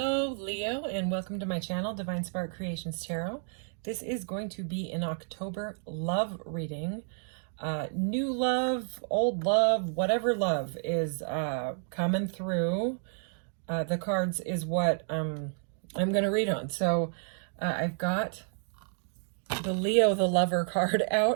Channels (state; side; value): silent; left; 57 dB below the other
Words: Leo, and welcome to my channel, Divine Spark Creations Tarot. This is going to be an October love reading. New love, old love, whatever love is coming through. The cards is what I'm going to read on. So I've got the Leo the Lover card